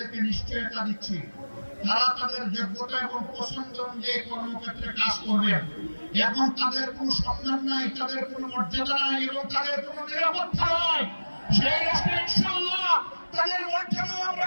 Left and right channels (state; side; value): inverted; both; correlation -1.00